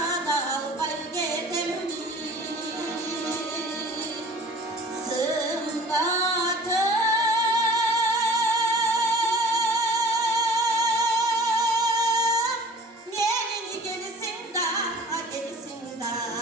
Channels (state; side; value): normal; both; correlation 0.45